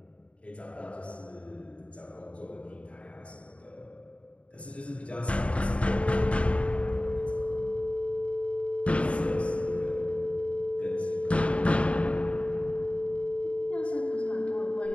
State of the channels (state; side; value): late; right; 0.063 ms